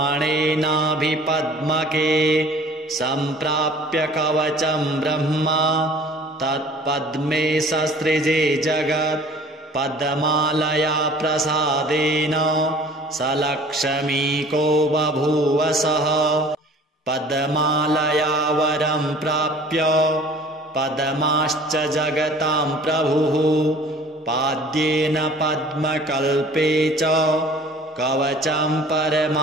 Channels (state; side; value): normal; both; correlation 0.49